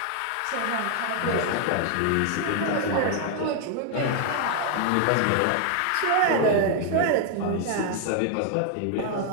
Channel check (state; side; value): different; both; correlation 0.00